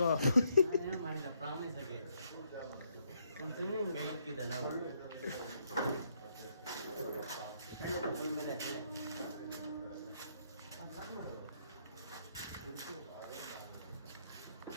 ಏನು ಮಾಡಿಲ್ಲ ಪ್ರಾಮಿಸ್ ಆಗಿ ಒಂದು ಸ್ವಿಮ್ಮಿಂಗ್ ಹೋಗ್ತಿದ್ದೆ ನಾವು.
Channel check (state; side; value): inverted; both; correlation -0.74